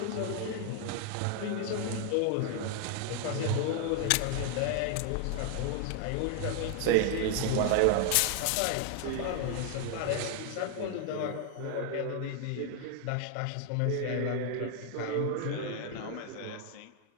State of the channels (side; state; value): both; different; correlation 0.00